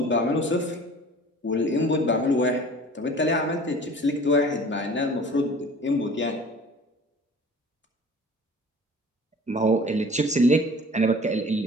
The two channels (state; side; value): normal; both; correlation 0.45